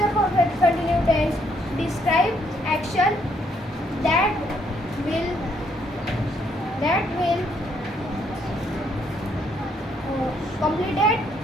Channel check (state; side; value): normal; both; correlation 0.71